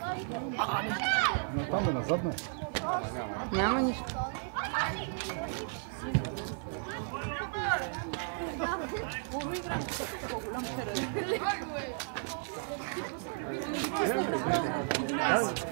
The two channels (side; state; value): left; silent; 55 dB below the other